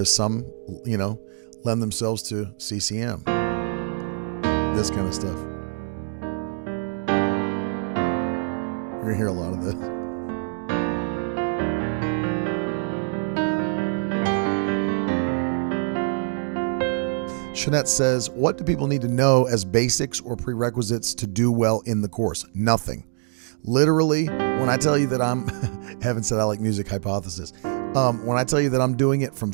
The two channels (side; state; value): left; silent; 57 dB below the other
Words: some, lend themselves to CCM. This kind of stuff. You're going to hear a lot of this. Shanette says, what do people need to know as basics or prerequisites to do well in the course? Nothing. Literally, when I tell you that I'm, Heaven said I like music hypothesis. When I tell you that I'm doing it from